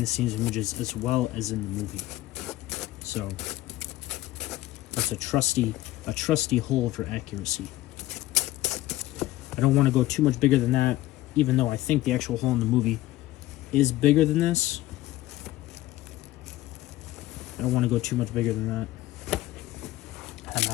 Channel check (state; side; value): quieter; right; 16.4 dB